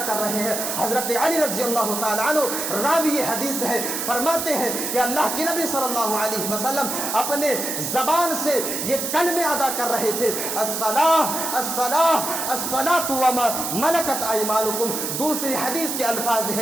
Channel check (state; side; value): noise; right; hiss, 3 dB below the sound